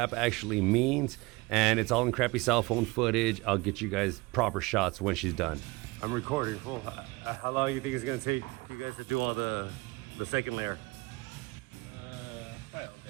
actually means, and it's all in crappy cell phone footage. I'll get you guys proper shots when she's done. I'm recording. Full. How long do you think it's gonna take you guys to do all the second layer? Probably all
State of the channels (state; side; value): quieter; left; 23.8 dB